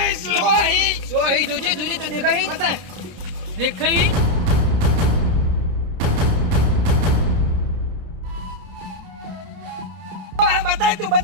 ચોહી સોહી જોજે તો દેખાય બતા દેખાઈ બતાય તું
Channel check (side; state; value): left; late; 30 ms